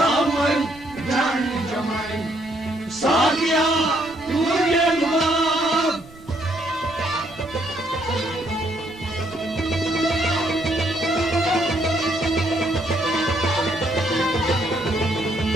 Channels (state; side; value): noise; right; rumble, 22 dB below the sound